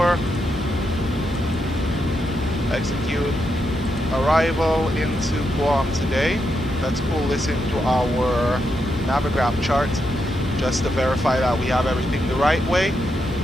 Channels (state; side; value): normal; both; correlation 0.83